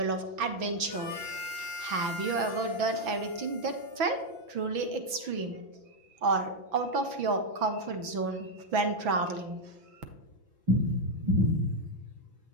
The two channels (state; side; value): late; left; 6.1 ms